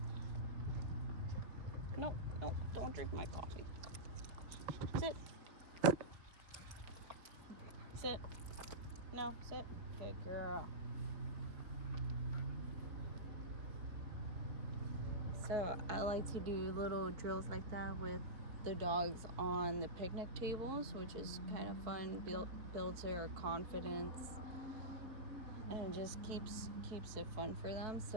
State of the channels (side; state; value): left; late; 4.3 ms